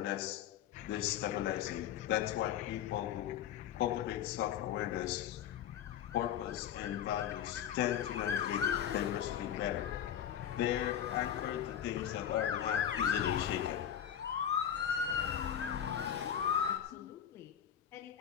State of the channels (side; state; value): right; quieter; 9.8 dB